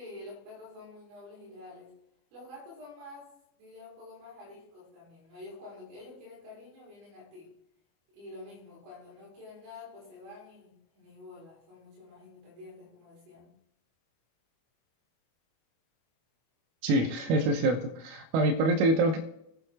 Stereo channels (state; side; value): late; left; 25 ms